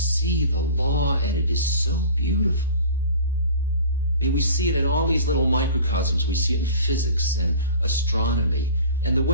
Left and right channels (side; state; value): both; inverted; correlation -0.42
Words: the law, and it is so beautiful. I mean, we see it in all these little microcosms. We see it in physics and astronomy, and the